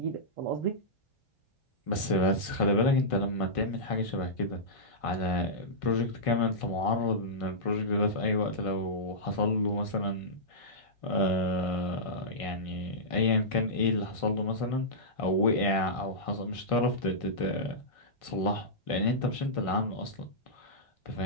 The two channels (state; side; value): late; right; 1.6 ms